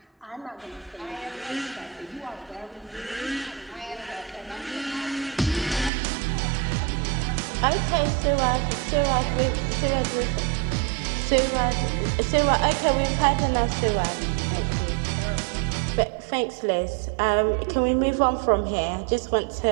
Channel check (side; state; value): left; drops out; at 5.9 s